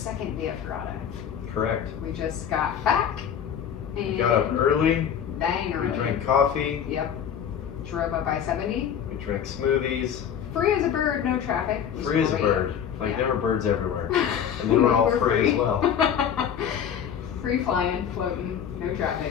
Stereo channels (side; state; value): right; quieter; 8.5 dB